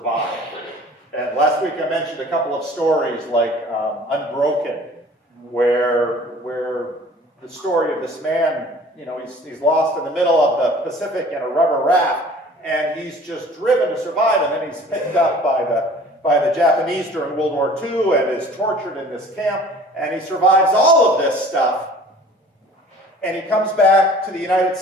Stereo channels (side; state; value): both; normal; correlation 0.48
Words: And last week I mentioned a couple of stories like Unbroken, where the story of this man, he's lost in the middle of the Pacific in a rubber raft, and he's just driven to survive, and then he's picked up by the Japanese during World War II and is tortured in this camp, and he survives all of this stuff. And he comes back to the United